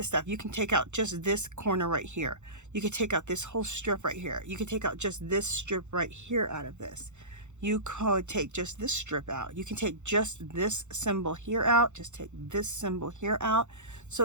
stuff. You can take out just this corner right here. You could take out this whole strip right here. You could take out just this strip right here out of this. You could take just this strip out. You can take just this symbol here out, just take this symbol here out.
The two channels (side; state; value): left; late; 0.84 ms